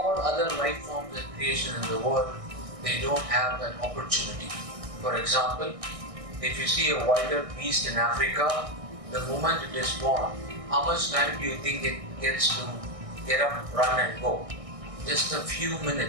other life forms and creation in the world, they don't have that opportunity. For example, if you see a wild beast in Africa, the moment it is born, how much time do you think it gets to get up, run and go? Just a few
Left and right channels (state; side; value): late; left; 1.6 ms